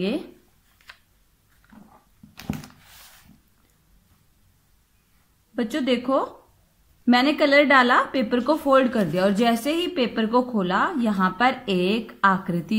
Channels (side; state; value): both; identical; correlation 1.00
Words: बच्चों देखो, मैंने कलर डाला, पेपर को फोल्ड कर दिया और जैसे ही पेपर को खोला यहां पर एक